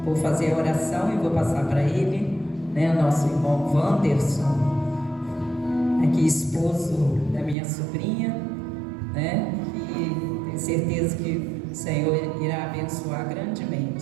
Vou fazer a oração e vou passar para ele, né, nosso irmão Wanderson, aqui esposo da minha sobrinha, né, e tenho certeza que o Senhor irá abençoar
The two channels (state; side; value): drops out; left; at 7.6 s